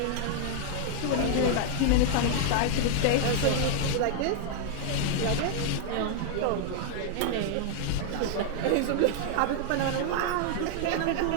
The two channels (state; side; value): different; both; correlation -0.01